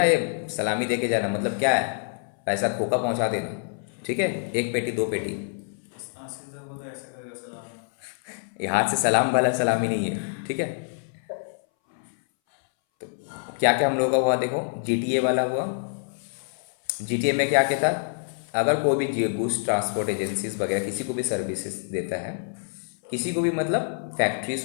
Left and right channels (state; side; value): silent; right; 61 dB below the other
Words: ये सलामी दे के जाना, मतलब क्या है? पैसा खोका पहुंचा देना, ठीक है, 1 पेटी 2 पेटी। ये हाथ से सलाम वाला सलामी नहीं है, ठीक है। तो क्या क्या हम लोगों का हुआ देखो, GTA वाला हुआ। GTA में क्या क्या था? अगर कोई भी गुड्स ट्रांसपोर्ट एजेंसीज वगैरह किसी को भी सर्विसेज देता है, किसी को भी, मतलब फैक्ट्री,